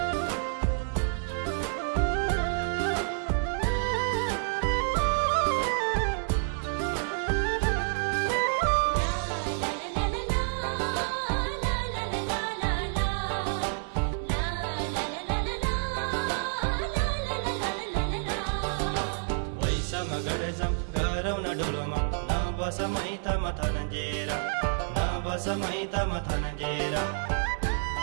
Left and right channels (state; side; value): silent; left; 59 dB below the other